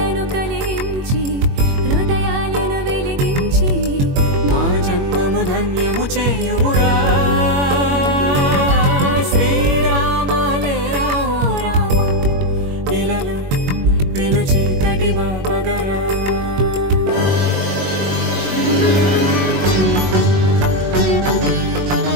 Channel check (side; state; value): left; late; 21 ms